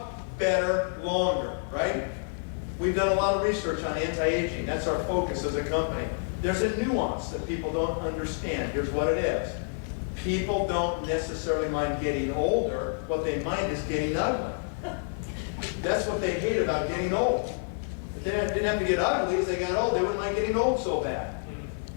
better longer, right? We've done a lot of research on anti-aging. That's our focus as a company. There's a nuance that people don't understand. Here's what it is. People don't necessarily mind getting older. What they mind is getting ugly. That's what they hate about getting old. If they didn't have to get ugly as they got old, they wouldn't mind getting old so bad.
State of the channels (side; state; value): right; silent; digital silence